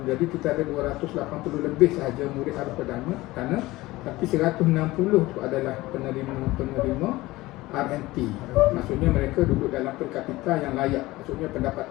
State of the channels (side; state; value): right; quieter; 19.0 dB